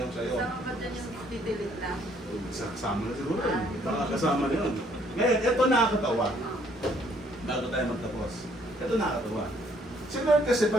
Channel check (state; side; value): normal; both; correlation 0.65